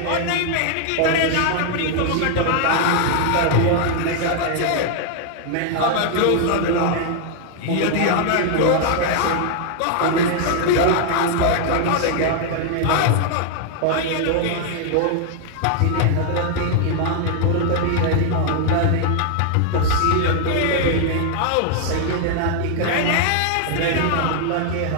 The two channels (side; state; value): both; different; correlation 0.00